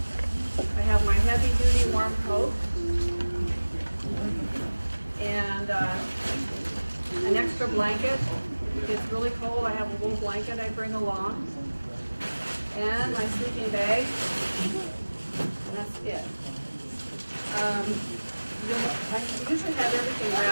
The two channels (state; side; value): inverted; both; correlation -1.00